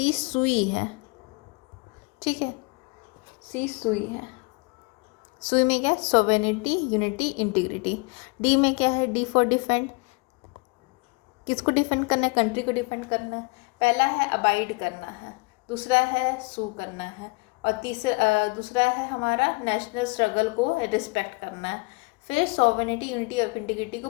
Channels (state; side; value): quieter; right; 28.7 dB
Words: सुई है, ठीक है, सी सुई है। सुई में क्या है, सोवेनिटी, यूनिटी, इंटीग्रिटी। डी में क्या है, डी फॉर डिफेंड। किसको डिफेंड करना है, कंट्री को डिफेंड करना है। पहला है अबाइड करना है, दूसरा है सू करना है, और दूसरा है हमारा नेशनल स्ट्रगल को रिस्पेक्ट करना है। फिर सोवेनिटी, यूनिटी और इंटीग्रिटी को